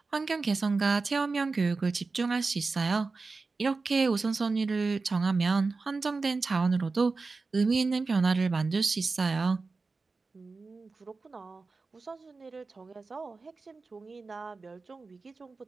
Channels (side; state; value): left; quieter; 4.0 dB